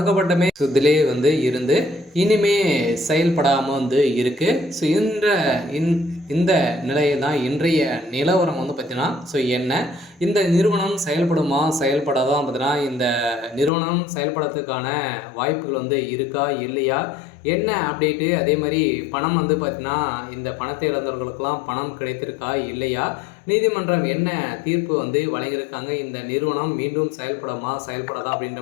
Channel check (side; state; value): right; drops out; at 13.7 s